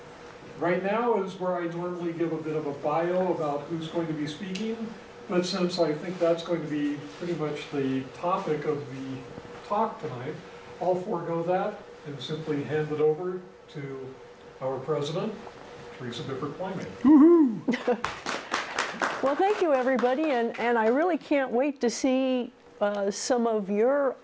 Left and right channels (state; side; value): identical; both; correlation 1.00